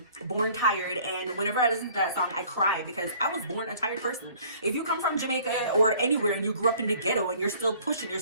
Born Tired, and whenever I listen to that song, I cry because I was born a tired person. If you come from Jamaica or anywhere and you grew up in the ghetto and you're still pushing, you're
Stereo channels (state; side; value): inverted; both; correlation -0.54